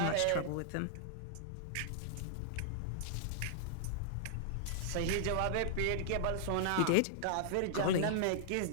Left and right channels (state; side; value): different; both; correlation -0.01